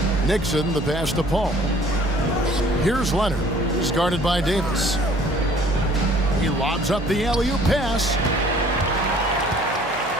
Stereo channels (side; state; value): both; normal; correlation 0.54